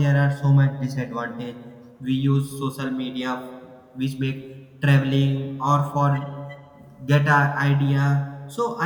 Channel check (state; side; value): identical; both; correlation 1.00